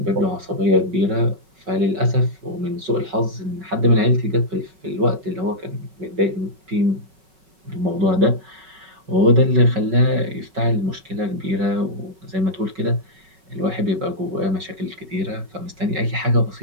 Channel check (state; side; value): late; left; 5.3 ms